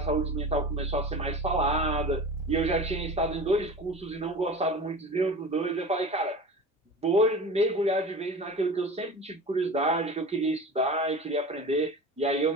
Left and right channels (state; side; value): normal; both; correlation 0.34